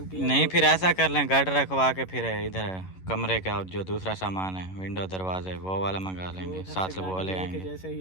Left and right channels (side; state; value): right; late; 11 ms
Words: टीआर नहीं फिर ऐसा कर लें, गार्डर रखवा के फिर इधर कमरे का जो दूसरा सामान है, विंडो दरवाजे, वो वाला मंगा लेंगे, साथ से वो ले आएंगे। जैसे